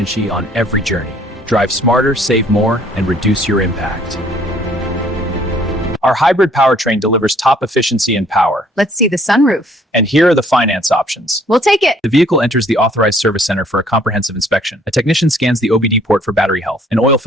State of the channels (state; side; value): normal; both; correlation 0.60